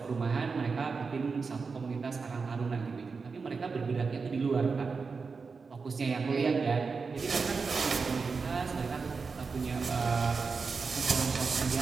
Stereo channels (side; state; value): left; quieter; 4.8 dB